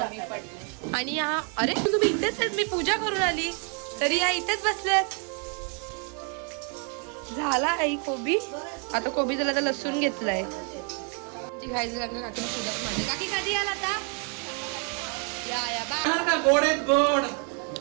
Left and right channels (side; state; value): left; quieter; 38.6 dB